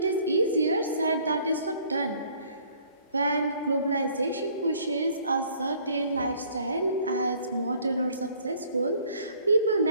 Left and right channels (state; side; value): inverted; both; correlation -0.58